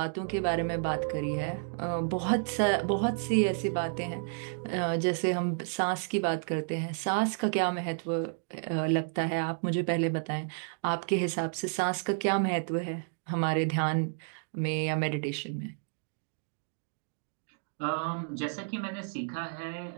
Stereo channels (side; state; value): left; silent; digital silence